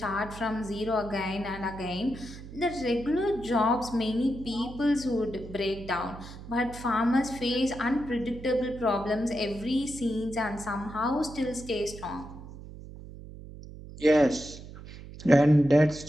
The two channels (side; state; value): right; noise; hum, 14 dB below the sound